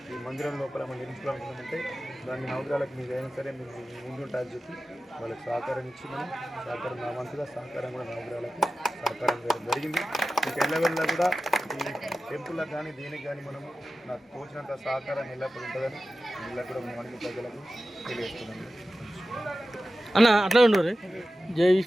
ఈ మందిరం లోపల మనం నిర్మించుకోవాలనుకుంటే దాన్ని నవగ్రహాలకు మీరు అయినా సరే మీరు ముందుంటారని చెప్పి వాళ్ళకి సహకారం ఇచ్చి మనం సహకారం నా వంతుగా సహకారం కూడా నవగ్రహాలకు సహకారం జరిగింది. మీకు ఎల్లవెల్లా కూడా ఈ టెంపుల్లకు కానీ దేనికి కానీ మనం నాకు తోచినంత సహకారం ఎల్లప్పుడు ఉంటుందని ఇలా కూడా మనకి ప్రజలకు తెలియజేస్తున్నాను. అన్న అట్లా ఉండరు జై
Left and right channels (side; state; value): both; normal; correlation 0.94